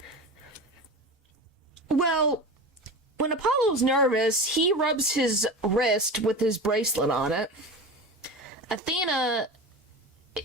Well, when Apollo's nervous, he rubs his wrist with his bracelet on it. Athena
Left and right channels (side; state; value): both; normal; correlation 0.29